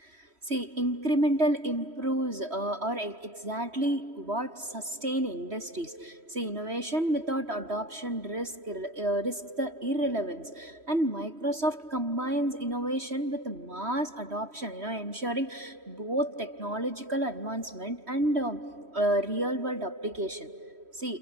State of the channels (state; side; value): late; left; 3.1 ms